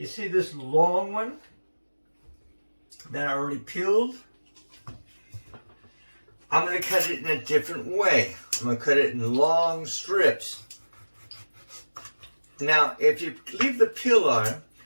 see this long one that I already peeled? I'm going to cut it in a different way. I'm going to cut it in long strips. Now, if you leave the peel on,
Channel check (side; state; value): both; inverted; correlation -1.00